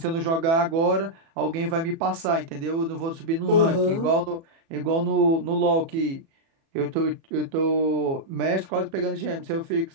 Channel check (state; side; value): late; left; 36 ms